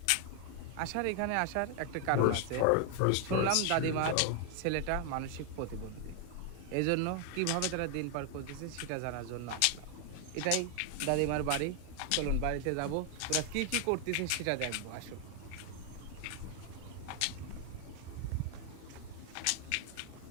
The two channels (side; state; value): both; different; correlation 0.00